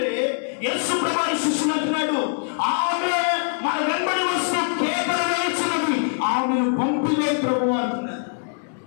యేసు ప్రభువు శిష్యులు అంటున్నాడు, ఆమె మన వెంబడి వస్తూ కేకలు వేసినది ఆమెను పంపిలే ప్రభువు అంటున్నాడు.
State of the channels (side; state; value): right; silent; digital silence